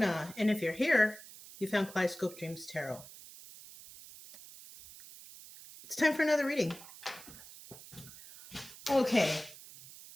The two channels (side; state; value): right; noise; hiss, 17 dB below the sound